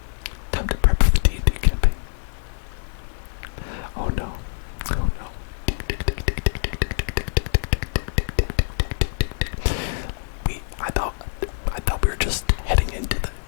Time to prep for the D&D campaign. Oh no. Oh no. I thought we were just heading into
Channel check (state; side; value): silent; right; digital silence